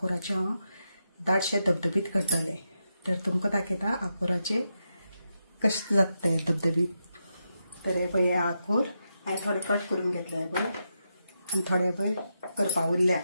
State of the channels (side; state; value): both; inverted; correlation -0.86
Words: हांव दाटशे धबधबीत करतलें। तर तुमकां दाखयता आंकुराचे कशें जाता ते धबधबीत। तर हे पळय आंकूर हांवें थोडे कट करून घेतले हे पळय आनी थोडे पळय करपा उरल्या।